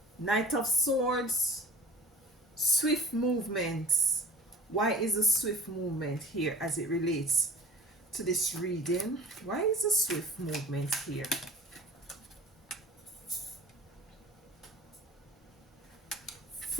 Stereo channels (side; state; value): both; normal; correlation 0.42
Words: Knight of Swords, swift movements. Why is a swift movement here as it relates to this reading? Why is a swift movement here?